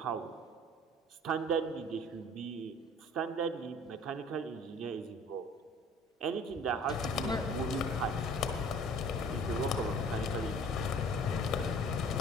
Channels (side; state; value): both; normal; correlation 0.49